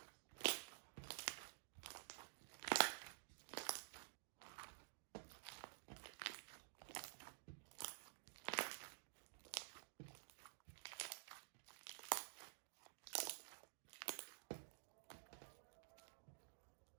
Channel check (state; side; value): silent; left; digital silence